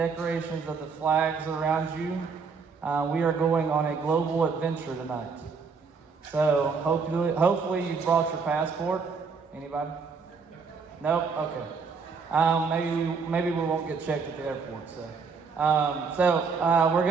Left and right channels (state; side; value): quieter; left; 5.2 dB